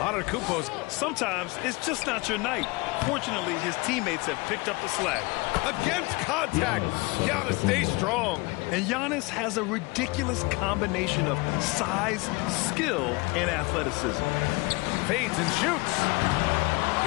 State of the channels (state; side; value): quieter; right; 25.2 dB